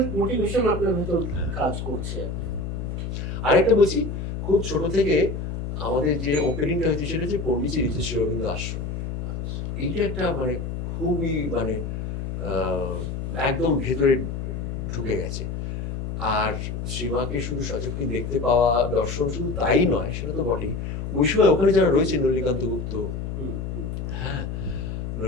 মোটিভেশন আপনার ভিতর কাজ করছে। আরেকটা বলছি, খুব ছোট থেকে আমাদের যে ওপেনিংটা হয়েছে সেটা হচ্ছে পন্ডিচেরিতে শ্রী অরবিন্দ আশ্রম। এইটা একটা মানে খুবই মানে একদম ভেতরে ঢুকে গেছে। আর শ্রীমাকে শুধু সচক্ষে দেখতে পাওয়া, দর্শন শুধু তাই নয়, সেটা তো বটেই, ওই সময় ওখানে যারা রয়েছে, নলিকান্ত গুপ্ত, হ্যাঁ,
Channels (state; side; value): noise; left; hum, 5 dB below the sound